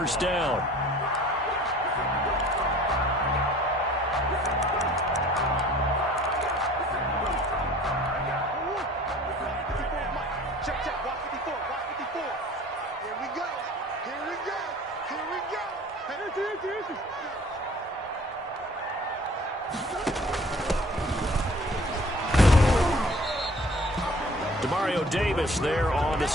down. Check, check. Watch 54. Watch 54. Here we go. Here we go. Here we go. Demario Davis there on the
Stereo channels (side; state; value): both; normal; correlation 0.49